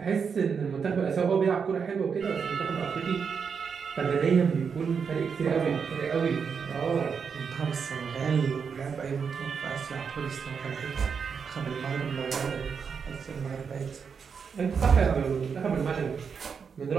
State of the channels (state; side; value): quieter; left; 6.2 dB